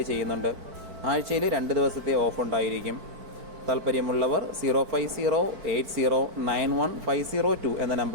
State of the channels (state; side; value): late; left; 4.6 ms